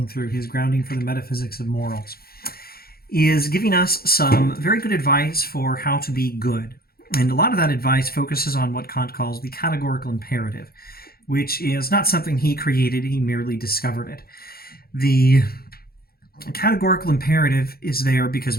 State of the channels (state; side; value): late; right; 0.44 ms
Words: through his grounding for the metaphysics of morals, is giving us some very good advice for how to be good. And a lot of that advice focuses on what Kant calls the categorical imperative, which is not something he created, he merely discovered it. The categorical imperative is there because